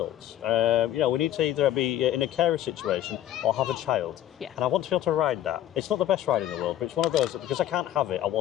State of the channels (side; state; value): right; quieter; 12.2 dB